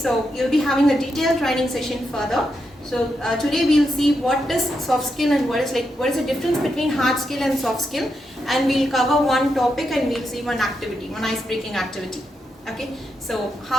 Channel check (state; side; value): normal; both; correlation 0.84